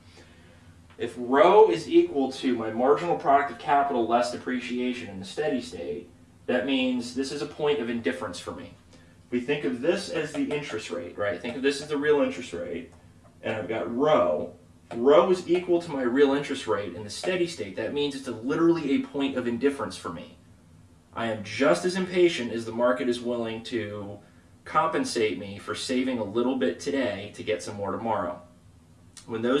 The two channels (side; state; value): both; identical; correlation 1.00